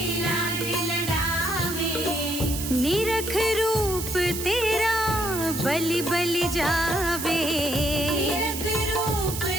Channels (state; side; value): noise; right; hiss, 6 dB below the sound